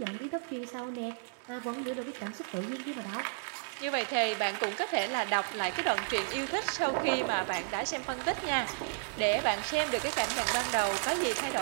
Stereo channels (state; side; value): silent; left; digital silence